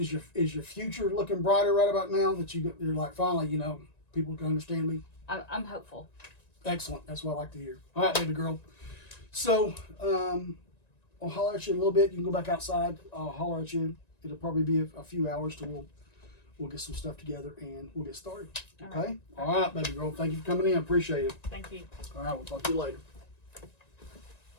your future looking brighter right about now that you're like, finally, people can understand me? I'm hopeful. Excellent. That's what I like to hear. All right, baby girl. So I'll holler at you in a little bit. You can go back outside. I'll holler at you. It'll probably be a few hours till we'll get some stuff together and we'll get started. Okay? All right, baby girl. Thank you for coming in. I appreciate it. Thank you. All right, we'll talk to you later.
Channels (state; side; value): late; right; 1.9 ms